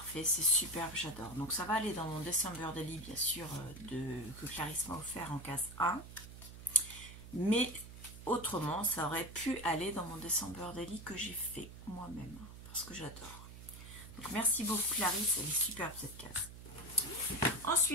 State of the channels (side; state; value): right; noise; hum, 14 dB below the sound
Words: c'est superbe, j'adore. Donc ça va aller dans mon December Daily, bien sûr, que Clarisse m'a offert en case 1. Mais autrement, ça aurait pu aller dans mon December Daily que j'ai fait moi-même, parce que j'adore. Donc merci beaucoup Clarisse, elle est superbe cette case.